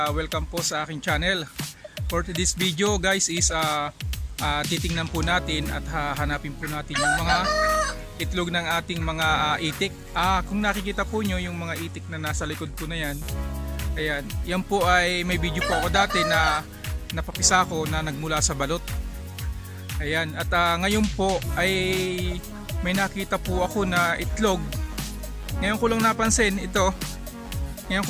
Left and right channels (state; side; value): identical; both; correlation 1.00